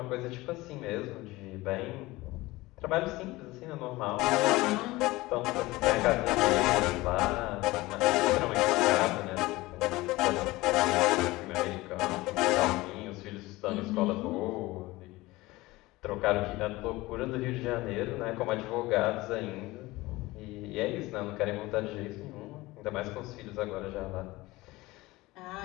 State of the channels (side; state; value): right; quieter; 20.0 dB